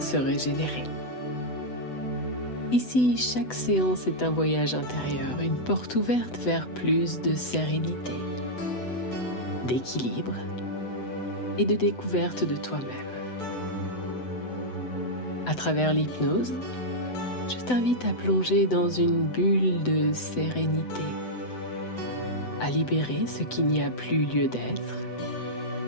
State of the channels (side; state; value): right; late; 8.0 ms